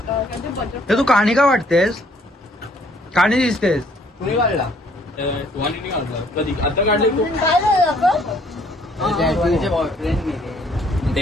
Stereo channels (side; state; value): both; normal; correlation 0.63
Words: हे तू कहाणी का वाटतेस कहाणी दिसतेस. कुणी काढला? तुम्हाला नाही काढलं कधी आता काढले तू काय झालं आपण?